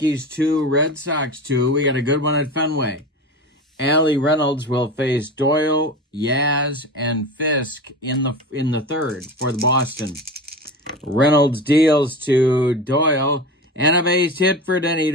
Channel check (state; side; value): normal; both; correlation 0.29